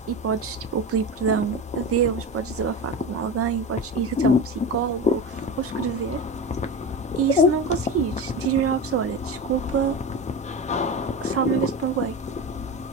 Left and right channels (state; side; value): normal; both; correlation 0.25